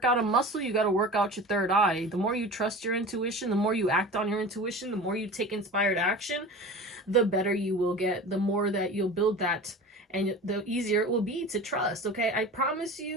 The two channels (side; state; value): both; normal; correlation 0.35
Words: out a muscle, you got to work out your third eye. The more you trust your intuition, the more you act on your intuition, the more you take inspired action, the better you will get, the more that you'll build that, and the easier it will be to trust, okay? I promise